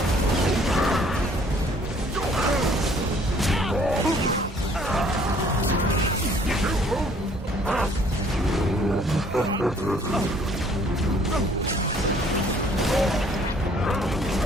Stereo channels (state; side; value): normal; both; correlation 0.59